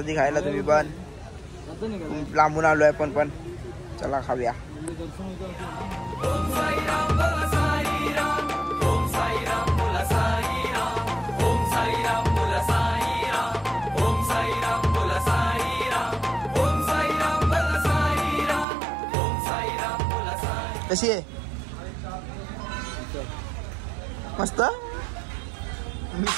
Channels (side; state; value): left; drops out; at 18.7 s